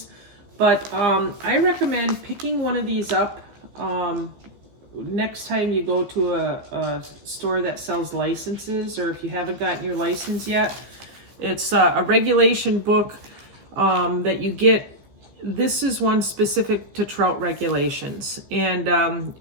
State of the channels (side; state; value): left; late; 15 ms